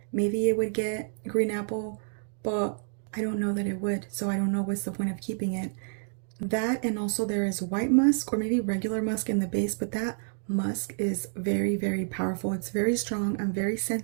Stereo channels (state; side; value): silent; left; 59 dB below the other